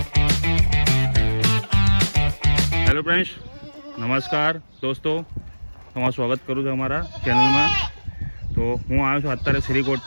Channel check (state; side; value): inverted; both; correlation -1.00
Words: friends, નમસ્કાર દોસ્તો, તમારું સ્વાગત કરું છું અમારા ચેનલમાં. તો હું આવ્યો છું અત્યારે શ્રીકોટ